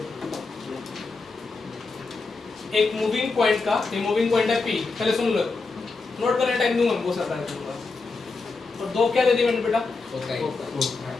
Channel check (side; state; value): right; quieter; 4.0 dB